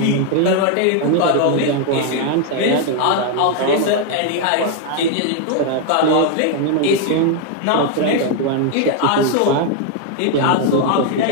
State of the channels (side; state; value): both; different; correlation 0.00